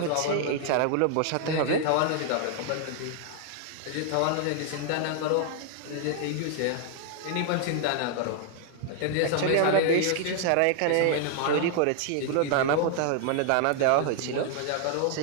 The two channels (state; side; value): different; both; correlation 0.00